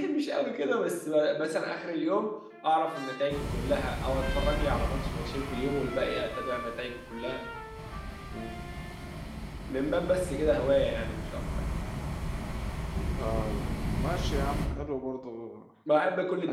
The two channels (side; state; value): both; identical; correlation 1.00